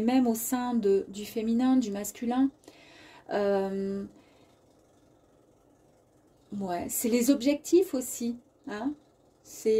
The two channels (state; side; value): identical; both; correlation 1.00